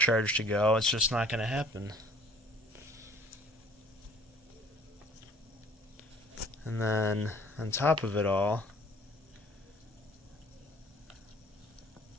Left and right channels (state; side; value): normal; both; correlation 0.54